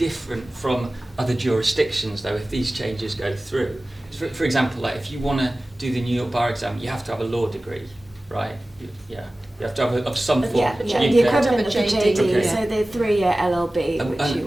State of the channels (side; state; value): both; normal; correlation 0.97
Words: from other jurisdictions, though, if these changes go through. For example, like if you want to do the New York bar exam, you have to have a law degree, right? You have to have of some form. Yeah, You the can- equivalent of the JD, Okay. so the 3-year LLB, which and-